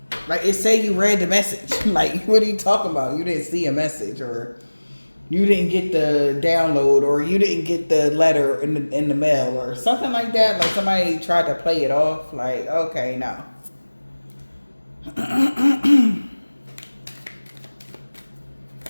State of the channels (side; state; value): both; inverted; correlation -1.00